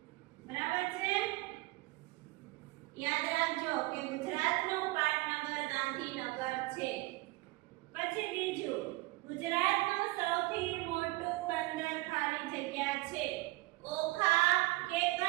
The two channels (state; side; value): quieter; left; 22.2 dB